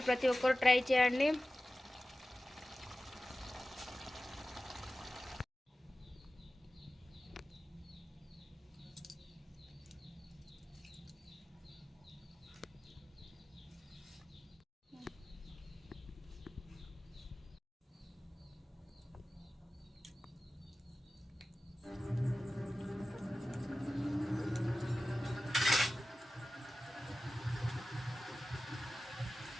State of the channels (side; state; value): both; normal; correlation 0.95